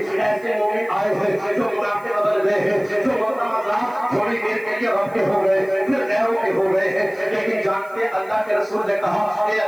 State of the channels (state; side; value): noise; right; hiss, 28 dB below the sound